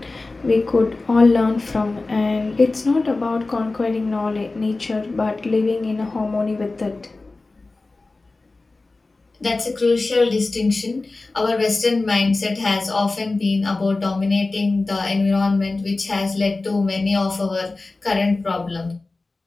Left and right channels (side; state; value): right; quieter; 3.4 dB